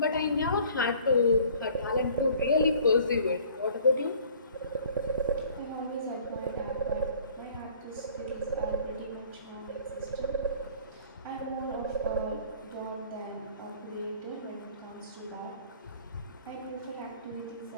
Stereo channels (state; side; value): inverted; both; correlation -0.52